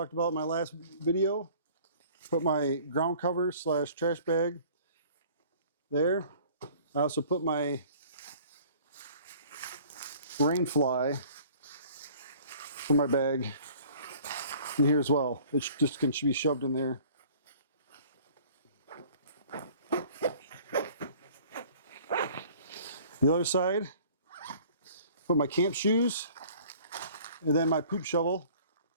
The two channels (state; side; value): inverted; both; correlation -0.51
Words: about in my last video. Put my ground cover / trash bag there. I also put my rain fly for my bag in here as well. It just can be shoved in there. The other side, put my camp shoes and then my poop shovel,